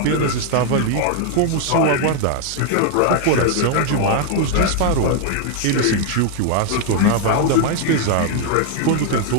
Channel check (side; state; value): both; different; correlation 0.00